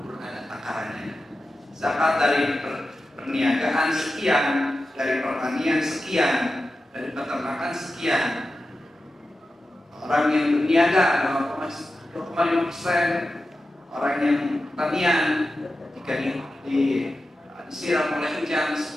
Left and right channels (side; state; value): both; normal; correlation 0.92